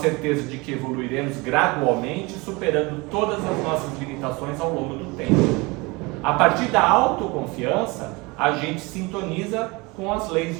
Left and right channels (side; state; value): left; quieter; 25.4 dB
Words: de que evoluiremos gradualmente, superando todas as nossas limitações ao longo do tempo. A partir da autoconfiança, a gente sintoniza com as leis